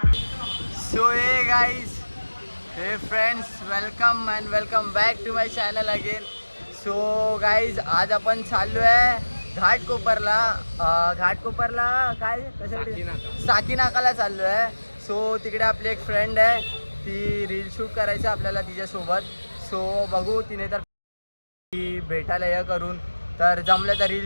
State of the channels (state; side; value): inverted; both; correlation -1.00